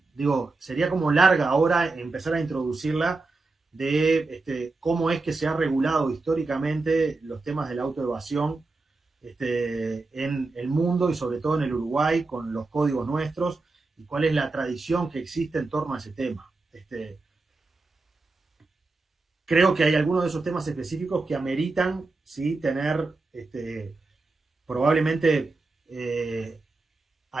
digo, sería como larga ahora empezar a introducirla, de cómo es que se ha regulado históricamente los temas de la autoevasión en el mundo y sobre todo en el Uruguay con los códigos nuestros, y cuál es la tradición que existe en torno a ese tema. Creo que hay algunos de esos temas específicos que ameritan, ¿sí?, tener probablemente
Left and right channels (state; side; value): quieter; left; 3.5 dB